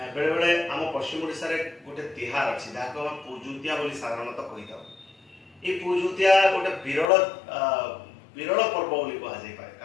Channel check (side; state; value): right; drops out; at 7.1 s